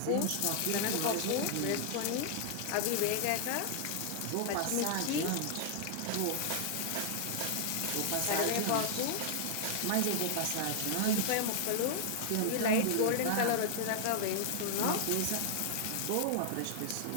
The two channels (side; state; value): both; different; correlation -0.01